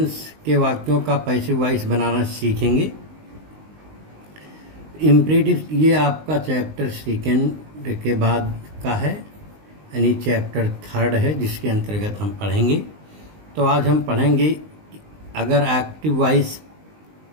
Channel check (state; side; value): late; left; 19 ms